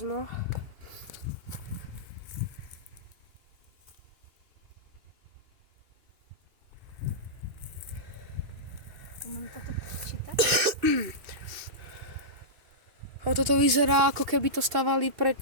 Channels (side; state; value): left; late; 2.6 ms